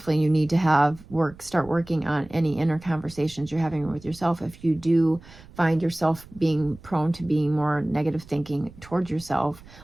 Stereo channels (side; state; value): right; noise; rumble, 21 dB below the sound